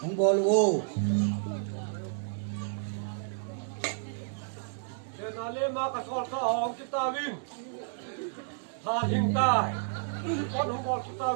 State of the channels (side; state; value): left; silent; digital silence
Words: không bò luôn để nó lên mà cái sọt cái hòm cái ta vin Tha Thiên Tai con không còn chúng ta